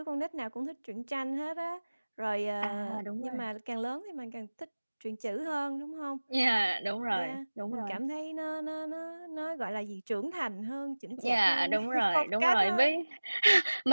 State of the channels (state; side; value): inverted; both; correlation -1.00